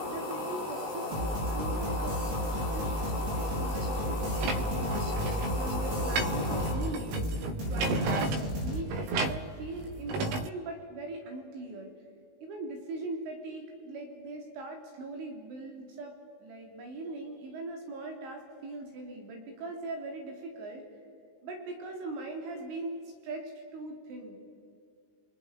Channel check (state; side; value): late; left; 19 ms